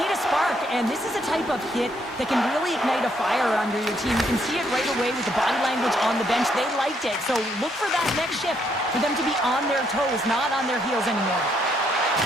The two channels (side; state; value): both; normal; correlation 0.72